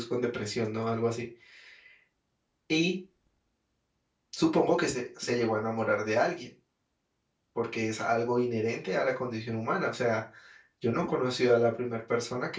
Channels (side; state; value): both; identical; correlation 1.00